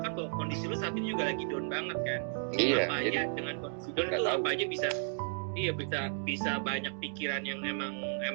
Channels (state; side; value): silent; left; digital silence